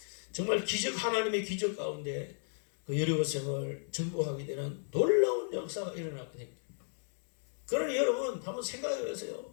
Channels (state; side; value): silent; right; digital silence